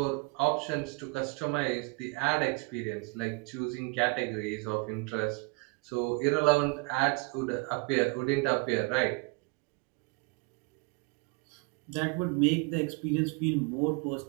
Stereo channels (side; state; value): left; quieter; 29.0 dB